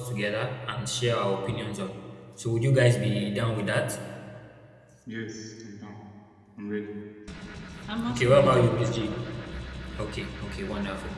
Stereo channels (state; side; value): identical; both; correlation 1.00